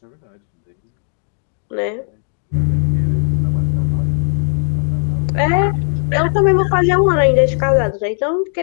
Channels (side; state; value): right; silent; 60 dB below the other